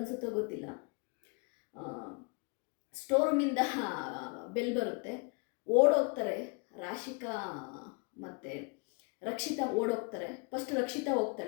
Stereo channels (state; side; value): quieter; right; 33.2 dB